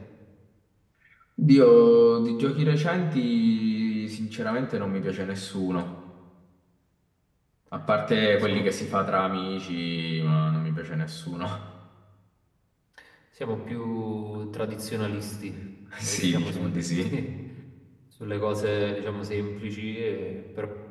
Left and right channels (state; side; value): identical; both; correlation 1.00